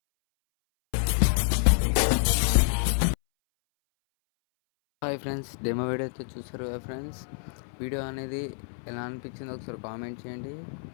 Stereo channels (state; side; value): silent; right; 59 dB below the other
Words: friends, demo video అయితే చూసారు కదా ఫ్రెండ్స్. వీడియో అనేది ఎలా అనిపించిందో ఒకసారి కామెంట్ చేయండి.